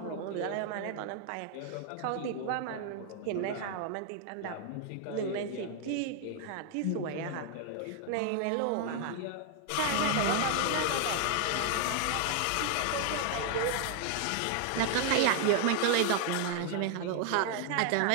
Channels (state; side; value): different; both; correlation 0.00